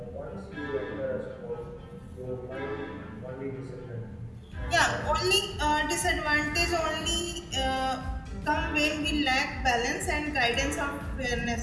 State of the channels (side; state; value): both; identical; correlation 1.00